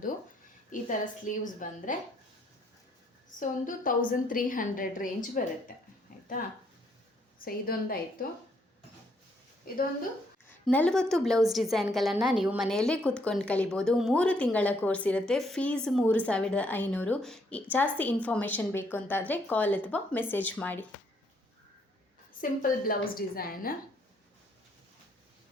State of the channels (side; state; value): both; normal; correlation 0.70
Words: ಈ ಥರ ಸ್ಲೀವ್ಸ್ ಬಂದರೆ ಸೊ ಒಂದು 1300 ರೇಂಜ್ ಬರುತ್ತೆ, ಆಯಿತಾ? ಸೊ ಇದೊಂದಾಯಿತು. ಇದೊಂದು 40 ಬ್ಲೌಸ್ ಡಿಸೈನ್ಗಳನ್ನು ನೀವು ಮನೆಯಲ್ಲೇ ಕೂತ್ಕೊಂಡು ಕಲಿಬೋದು. 3 ತಿಂಗಳ ಕೋರ್ಸ್ ಇರುತ್ತೆ. ಫೀಸ್ 3500. ಜಾಸ್ತಿ ಇನ್ಫಾರ್ಮೇಷನ್ ಬೇಕು ಅಂತಾದರೆ ಕಾಲ್ ಅಥವಾ ಮೆಸೇಜ್ ಮಾಡಿ. Simple blouse design.